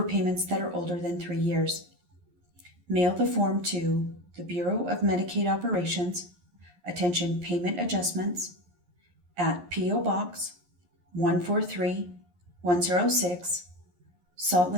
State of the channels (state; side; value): late; left; 11 ms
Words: that are older than 3 years. Mail the form to the Bureau of Medicaid Operations, Attention Payment Adjustments, at P.O. Box 143106, Salt